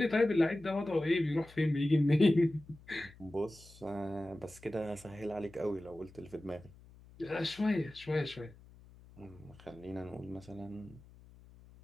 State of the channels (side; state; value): left; noise; hum, 22 dB below the sound